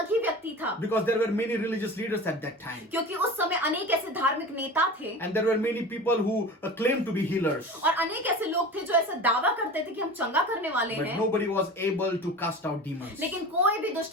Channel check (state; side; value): normal; both; correlation 0.34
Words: ही व्यक्ति था, Because there were many religious leaders at that time. क्योंकि उस समय अनेक ऐसे धार्मिक नेता थे And there were many people who claimed to be healers. और अनेक ऐसे लोग थे जो ऐसा दावा करते थे कि हम चंगा करने वाले But हैं, nobody was able to cast out demons. लेकिन कोई भी